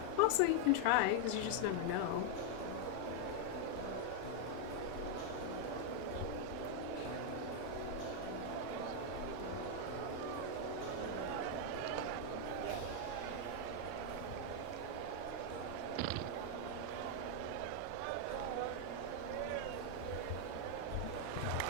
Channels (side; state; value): both; different; correlation 0.00